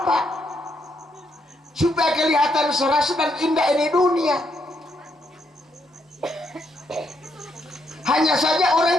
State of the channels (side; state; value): both; normal; correlation 0.77